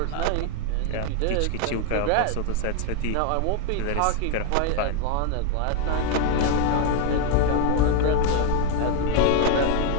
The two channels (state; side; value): different; both; correlation 0.01